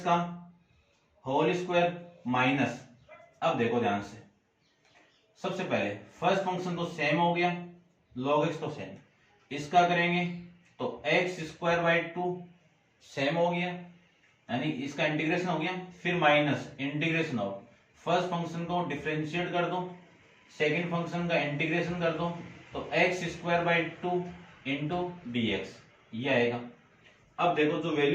का होल स्क्वायर माइनस, अब देखो ध्यान से, सबसे पहले फर्स्ट फंक्शन तो सेम हो गया, log x तो सेम, इसका करेंगे तो x square by to same हो गया, यानी इसका इंटीग्रेशन हो गया, फिर minus integration of first function को डिफरेंशिएट कर दो, सेकंड फंक्शन का इंटीग्रेशन कर दो, तो x square by two into d x ये आएगा। अब देखो जो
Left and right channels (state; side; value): identical; both; correlation 1.00